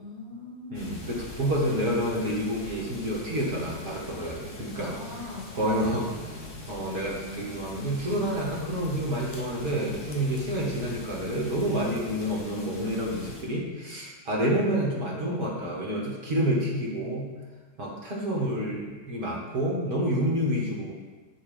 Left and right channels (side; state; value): left; late; 5.7 ms